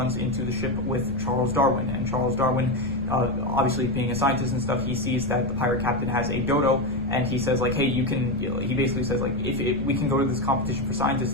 into the ship with Charles Darwin, and Charles Darwin, obviously being a scientist and stuff, he sees that the pirate captain has a dodo, and he says like, hey, you can, he basically says like, if we can go to this competition for scientists,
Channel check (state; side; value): noise; left; rumble, 11 dB below the sound